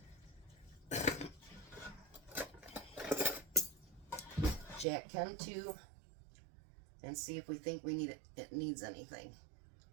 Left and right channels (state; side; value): drops out; left; at 4.9 s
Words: Jack can too. And see if we think it needs anything.